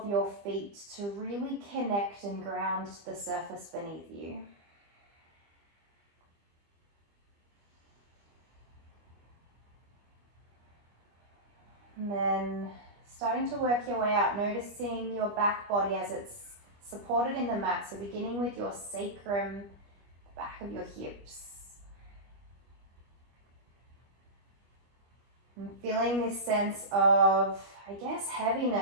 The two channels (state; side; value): late; left; 25 ms